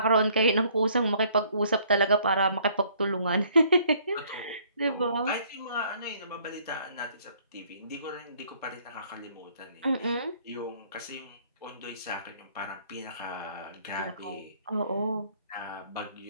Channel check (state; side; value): inverted; both; correlation -0.61